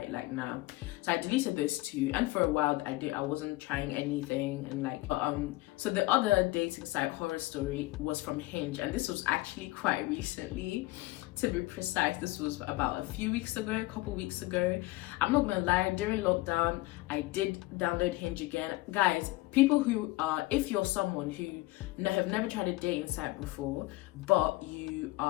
like nah. So I deleted those two, and for a while I wasn't trying anything, and like so the other dating site, Horror Story, was from Hinge, and this was actually quite recently. To be precise, this was about a couple weeks ago. I'm not gonna lie, during lockdown, I did download Hinge again. Guys, people who if you're someone who have never tried a dating site before, but you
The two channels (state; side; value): quieter; right; 20.1 dB